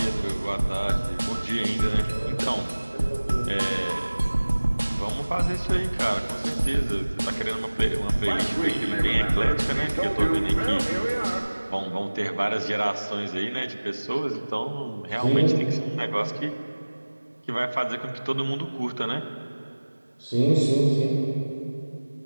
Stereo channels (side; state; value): both; inverted; correlation -1.00